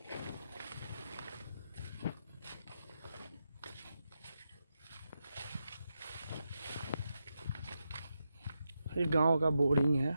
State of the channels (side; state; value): both; inverted; correlation -0.87